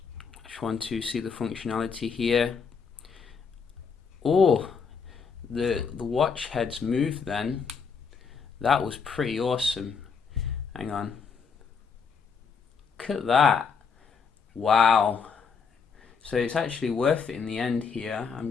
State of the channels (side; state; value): right; quieter; 5.8 dB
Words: just want to see the functionality here. Oh, the watch heads moved then. That was pretty awesome. Hang on. Look at that. Wow. So it's actually worth it in the end here. I'm